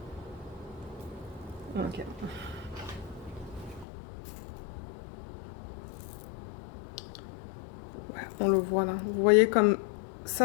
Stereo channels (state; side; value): drops out; right; at 3.9 s